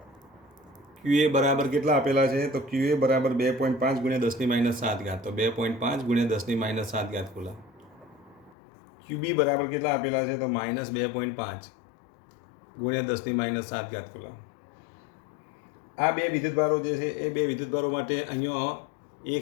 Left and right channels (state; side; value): drops out; right; at 8.6 s